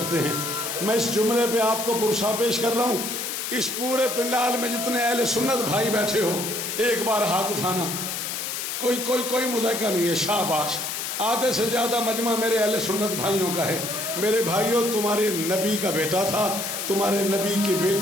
ہیں۔ میں اس جملے پہ آپ کو پرسہ پیش کر رہا ہوں۔ اس پورے پنڈال میں جتنے اہل سنت بھائی بیٹھے ہو ایک بار ہاتھ اٹھانا، کوئی مذائقہ نہیں ہے، شاباش۔ آدھے سے زیادہ مجمع میرے اہل سنت بھائیوں کا ہے۔ میرے بھائیوں، تمہارے نبی کا بیٹا تھا، تمہارے نبی کی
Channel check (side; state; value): left; noise; hiss, 4 dB below the sound